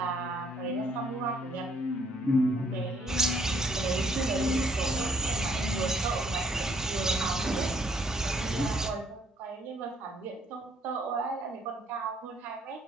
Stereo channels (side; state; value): both; normal; correlation 0.66